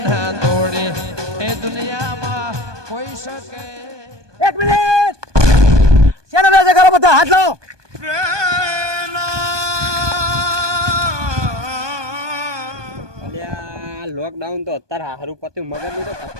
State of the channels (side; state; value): left; late; 1.2 ms